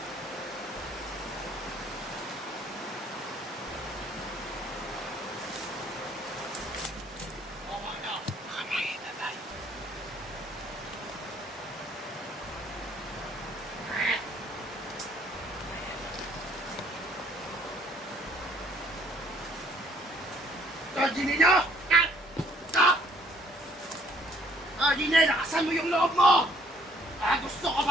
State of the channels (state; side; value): normal; both; correlation 0.62